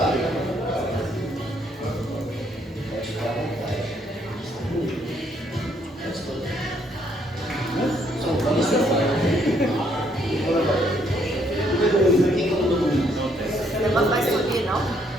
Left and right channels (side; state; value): both; normal; correlation 0.69